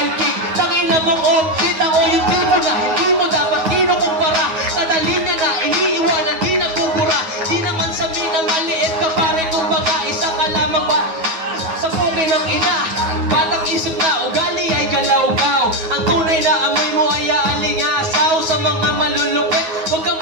king? Tangina mong outfit, ako yung tipo na hindi mo dapat kinukumpara. Kadali niya na, iniiwanan, di nabubura. Di naman sa mina, maliit ka pare, kumbaga isa ka lamang ba? Sa pugay ng ina, batang isip na ugali ay galaw-gaw. Ang tunay na amoy mo ay aalingasaw. Sa mga malulupit, huwag kang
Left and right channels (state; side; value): late; left; 9.4 ms